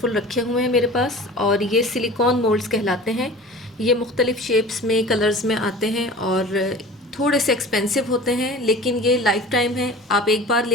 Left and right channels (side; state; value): both; normal; correlation 0.39